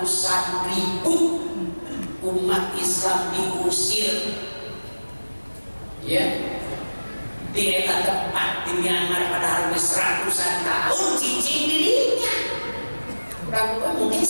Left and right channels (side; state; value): both; inverted; correlation -1.00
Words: ribu umat Islam diusir ya di eta tempat di Myanmar padahal seratusan tahun cicing dirinya kurang mungkin